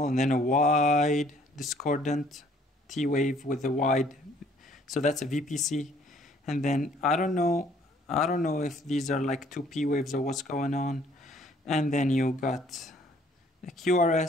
and then a wide discordant T wave with a wide, so that's a VPC. And then I don't know if these are like two P waves or what's going on. And then you got the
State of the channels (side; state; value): both; normal; correlation 0.60